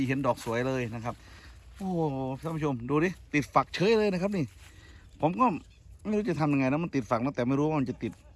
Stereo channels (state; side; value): identical; both; correlation 1.00